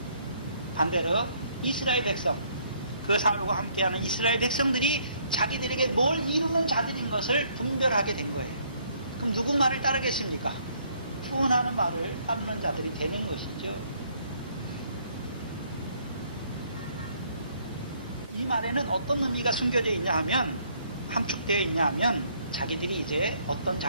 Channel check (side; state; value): both; inverted; correlation -0.66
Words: 반대로 이스라엘 백성, 그 사울과 함께하는 이스라엘 백성들이 자기들에게 뭘 이루는 자들인 것을 분별하게 된 거예요. 그럼 누구 말을 따르겠습니까? 구원하는 말을 따르는 자들이 되는 것이죠. 이 말에는 어떤 의미가 숨겨져 있냐 하면, 함축되어 있냐 하면 자기들이 이제 어떤